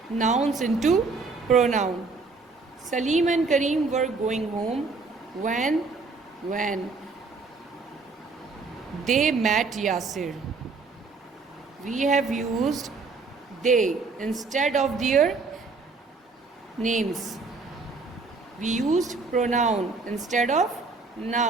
nouns into pronoun. Salim and Kareem were going home when they met Yasir. We have used they instead of their names. We used pronoun instead of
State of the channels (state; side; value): quieter; left; 4.1 dB